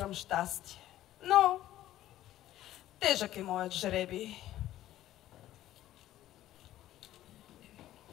щастие, но тежък е моят жребий.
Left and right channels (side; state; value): right; quieter; 13.7 dB